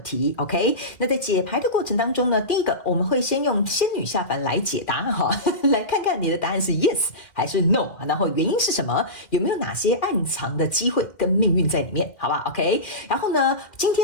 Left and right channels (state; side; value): late; right; 2.1 ms